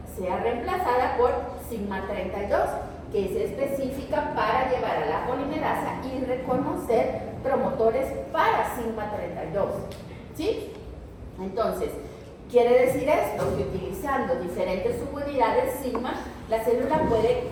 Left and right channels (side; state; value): both; identical; correlation 1.00